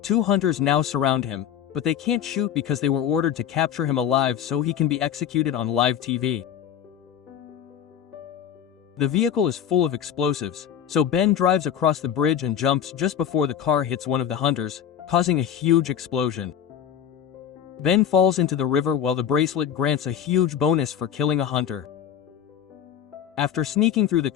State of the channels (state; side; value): quieter; right; 9.3 dB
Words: Two hunters now surround him, but they can't shoot because they were ordered to capture him alive so he can be executed on live TV. The vehicle is full of explosives, so Ben drives across the bridge and jumps just before the car hits one of the hunters, causing a huge explosion. Ben falls into the river while the bracelet grants a huge bonus for killing a hunter. After sneaking through the